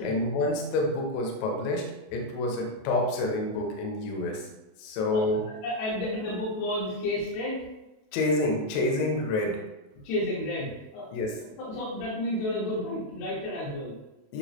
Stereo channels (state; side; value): late; right; 28 ms